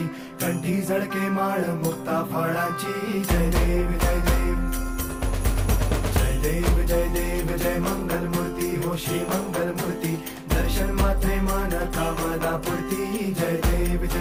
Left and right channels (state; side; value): identical; both; correlation 1.00